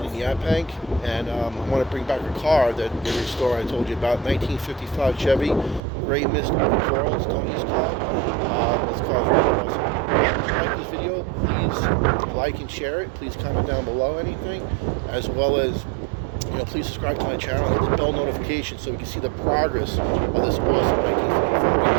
in Yaphank, and I want to bring back a car that they restored. I told you about 1955 Chevy Gray Mist over Coral. It's Tony's car. This car is really awesome. If you like this video, please like and share it. Please comment down below anything, as well as please subscribe to my channel and hit the bell notification so we can see the progress of this awesome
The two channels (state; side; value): drops out; left; at 5.8 s